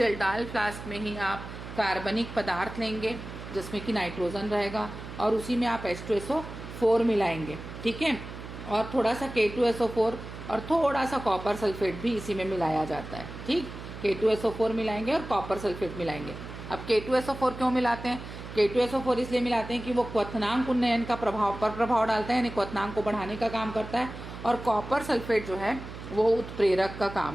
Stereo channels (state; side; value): noise; right; hum, 11 dB below the sound